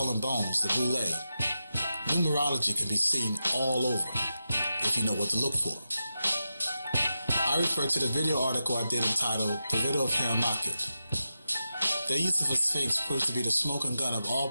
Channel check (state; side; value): inverted; both; correlation -0.90